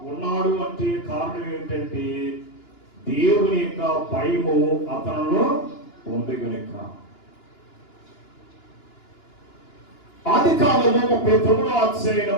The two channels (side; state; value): right; late; 2.9 ms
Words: ఉన్నాడు. అంటే కారణం ఏంటంటే దేవుని యొక్క భయము అతనిలో ఉంది కనుక. ఆదికాండము 39వ